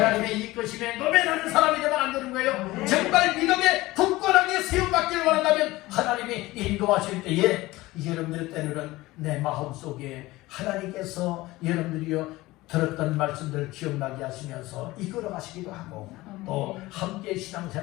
이끄심에 노매하는 사람이 되면 안 되는 거예요. 정말 믿음에 굳건하게 세움받기를 원한다면 하나님이 인도하실 때에 여러분들 때로는 내 마음속에 하나님께서 여러분들이요 들었던 말씀들 기억나게 하시면서 이끌어 가시기도 하고 또 함께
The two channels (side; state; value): right; quieter; 19.1 dB